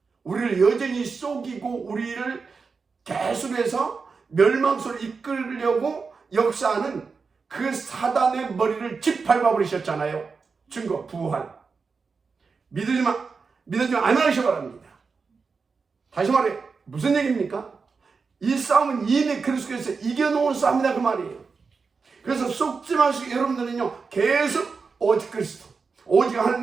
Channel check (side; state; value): left; quieter; 4.9 dB